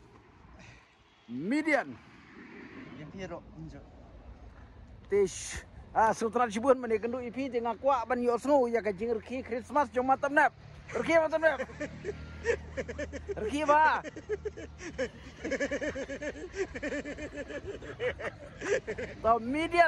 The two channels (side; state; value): both; identical; correlation 1.00